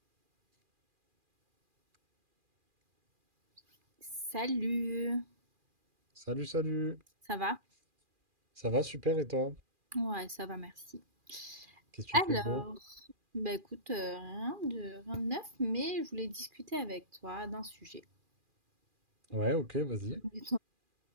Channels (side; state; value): left; late; 2.4 ms